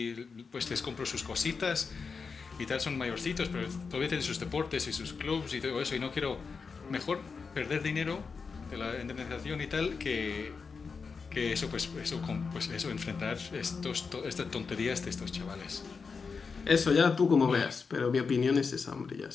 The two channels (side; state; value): right; quieter; 5.1 dB